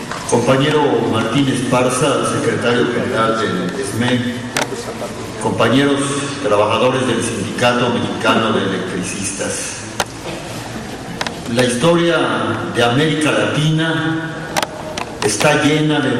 Compañero Martín Esparza, secretario general del SME, compañeros trabajadores del Sindicato Mexicano de Electricistas. La historia de América Latina está llena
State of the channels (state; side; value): identical; both; correlation 1.00